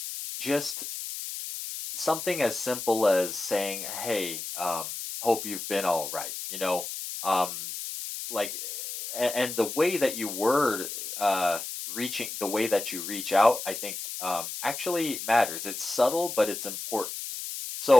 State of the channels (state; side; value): noise; left; hiss, 7 dB below the sound